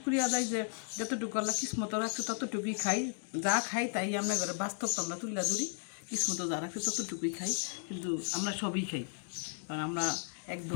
আদায় যে যতটুকু আল্লাহ কিসমত রাখছে ততটুকুই খাই। যা খাই তাই আমরা ঘরে বাস্তব তো আমরা তুলে ধরি, কিসমত যা রাখছে ততটুকুই খাই। কিন্তু আমরা সবই খাই, কারণ আমরা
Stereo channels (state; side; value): silent; right; 55 dB below the other